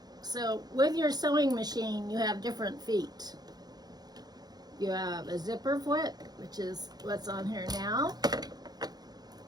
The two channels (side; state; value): left; late; 0.19 ms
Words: So with your sewing machine, you have different feet. You have a zipper foot, which is what's on here now.